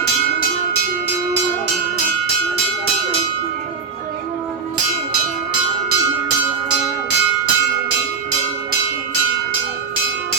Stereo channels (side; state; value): left; quieter; 5.6 dB